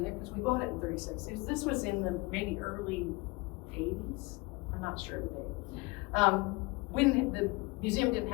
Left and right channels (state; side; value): quieter; right; 25.2 dB